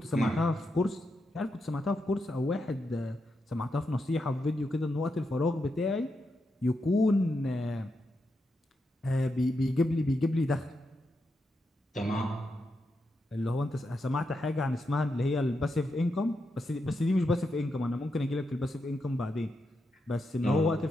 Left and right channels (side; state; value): both; normal; correlation 0.85